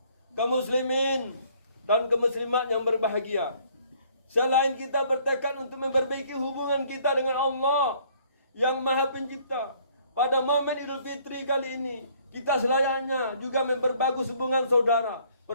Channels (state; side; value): inverted; both; correlation -0.61